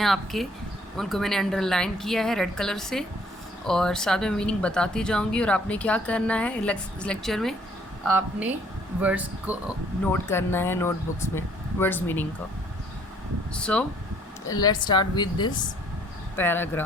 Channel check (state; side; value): normal; both; correlation 0.62